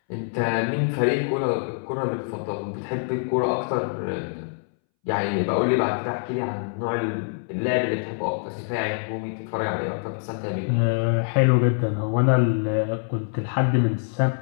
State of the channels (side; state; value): right; silent; 62 dB below the other